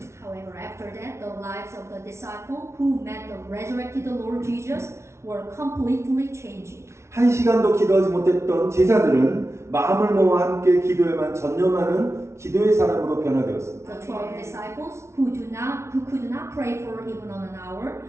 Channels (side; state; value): left; late; 0.13 ms